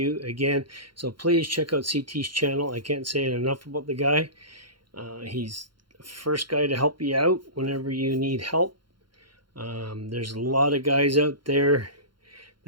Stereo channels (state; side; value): late; left; 0.72 ms